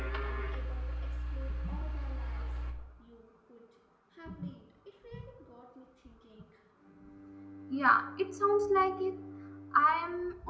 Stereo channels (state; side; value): identical; both; correlation 1.00